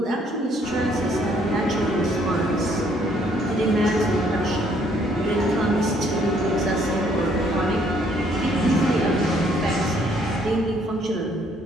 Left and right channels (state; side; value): normal; both; correlation 0.65